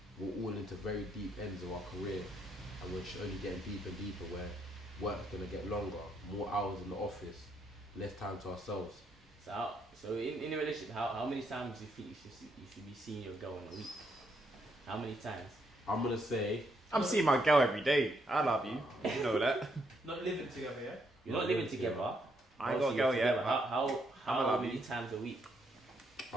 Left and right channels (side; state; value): both; normal; correlation 0.75